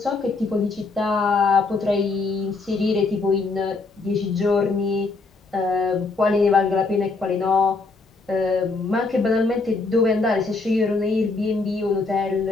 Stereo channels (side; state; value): right; quieter; 3.8 dB